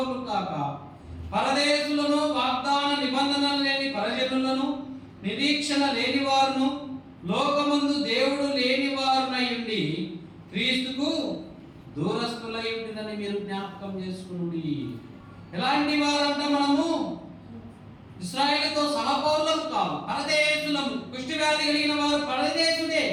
కాక పరదేశులను, వాగ్దాన నిబంధనలు లేని పరజనులను, నిరీక్షణ లేని వారును లోకమందు దేవుడు లేని వారునై ఉండి క్రీస్తుకు దూరస్తులై ఉంటుందని మీరు జ్ఞాపకం చేసుకుని. ఎలాంటి వారంట? మనము ఇశ్రాయేలుతో సహపౌరులం కాదు, పరదేశులము. కుష్టి వ్యాధి కలిగిన వారు పరదేశుడే,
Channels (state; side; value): identical; both; correlation 1.00